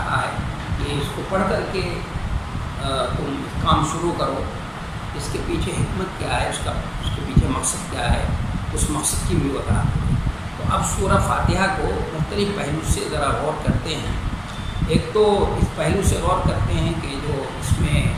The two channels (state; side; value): identical; both; correlation 1.00